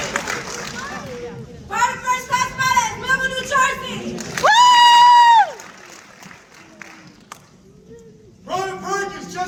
Private First Class Meadows, Millville, New Jersey. Private Perkins,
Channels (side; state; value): both; identical; correlation 1.00